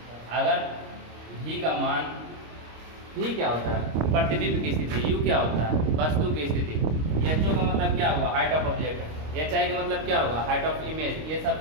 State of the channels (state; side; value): late; left; 26 ms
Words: अगर v का मान, v क्या होता है प्रतिबिंब की स्थिति, u क्या होता है वस्तु की स्थिति, ho का मतलब क्या हुआ हाइट ऑफ ऑब्जेक्ट, hi का मतलब क्या होगा हाइट ऑफ इमेज, ये सब